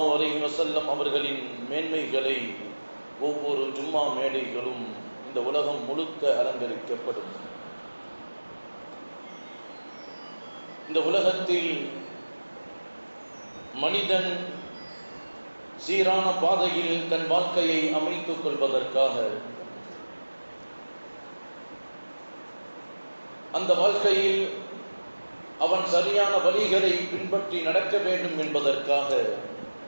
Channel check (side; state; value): both; inverted; correlation -1.00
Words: அலைஹி வஸல்லம் அவர்களின் மேன்மைகளை ஒவ்வொரு ஜும்மா மேடைகளும் இந்த உலகம் முழுக்க அலங்கரிக்கப்படும். இந்த உலகத்தில் மனிதன் சீரான பாதையில் தன் வாழ்க்கையை அமைத்துக் கொள்வதற்காக, அந்த வாழ்க்கையில் அவன் சரியான வழிகளை பின்பற்றி நடக்க வேண்டும் என்பதற்காக